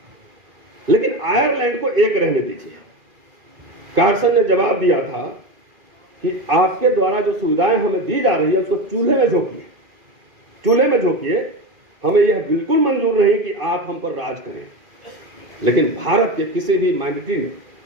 लेकिन आयरलैंड को एक रहने दीजिए। कार्सन ने जवाब दिया था कि आपके द्वारा जो सुविधाएं हमें दी जा रही है उसको चूल्हे में झोंकिए, चूल्हे में झोंकिए। हमें यह बिल्कुल मंजूर नहीं कि आप हम पर राज करें। लेकिन भारत के किसी भी माइनॉरिटी ने,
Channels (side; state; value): left; late; 2.5 ms